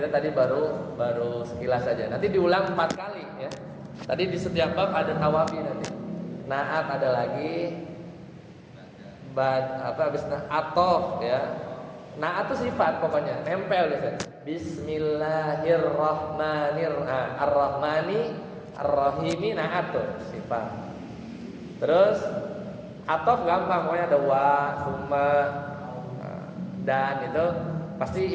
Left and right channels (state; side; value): identical; both; correlation 1.00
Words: tadi baru sekilas saja. Nanti diulang 4 kali ya. Tadi di setiap bab ada tawabi nanti. Naat ada lagi. Habis atof ya. Naat itu sifat pokoknya, nempel biasanya. Bismillahirrahmanirrahim. Ar-Rahmani Ar-Rahimi, naat tuh sifat. Terus atof gampang, pokoknya ada wa, summa, dan itu pasti